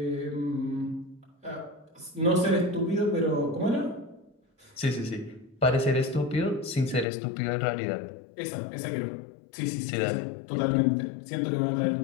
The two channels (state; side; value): drops out; right; at 7.1 s